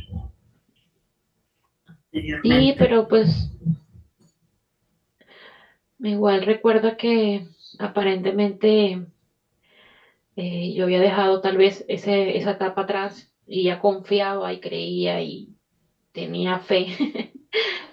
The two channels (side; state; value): both; identical; correlation 1.00